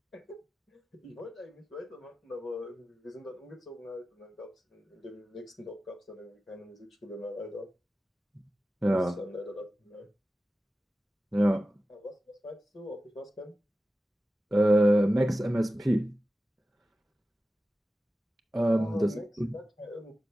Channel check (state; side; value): normal; both; correlation 0.94